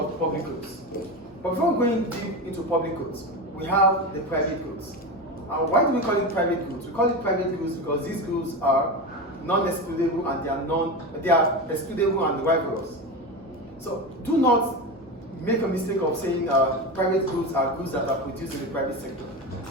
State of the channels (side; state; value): both; normal; correlation 0.21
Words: public goods. But before going deep into public goods, we have the private goods. Why do we call it private goods? We call it private goods because these goods are non-excludable and they are excludable and rivalrous. So do not make a mistake of saying private goods are goods that are produced in the private sector.